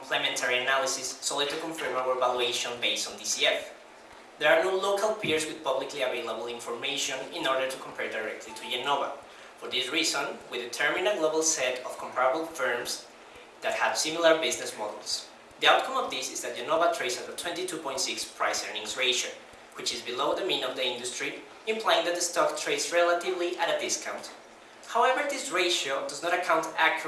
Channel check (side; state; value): both; identical; correlation 1.00